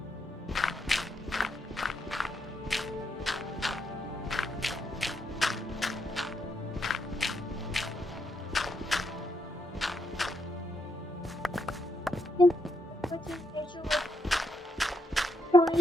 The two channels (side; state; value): both; normal; correlation 0.80